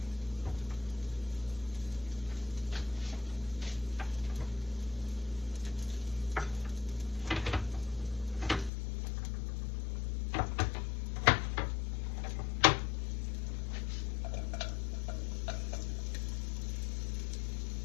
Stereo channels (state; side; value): drops out; right; at 8.7 s